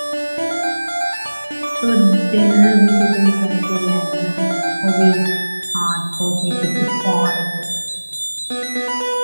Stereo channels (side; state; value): both; inverted; correlation -1.00